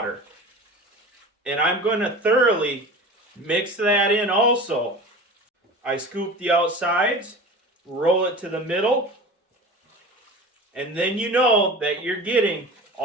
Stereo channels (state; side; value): normal; both; correlation 0.35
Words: And I'm going to thoroughly mix that in also. I scoop the outsides, roll it to the middle, and then you know that you're getting